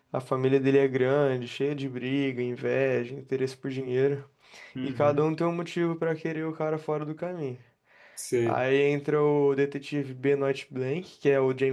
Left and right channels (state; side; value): identical; both; correlation 1.00